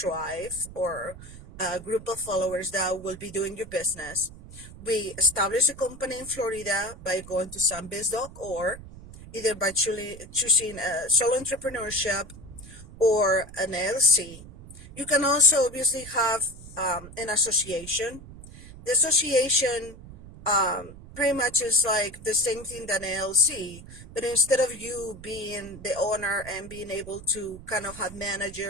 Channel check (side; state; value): right; noise; rumble, 16 dB below the sound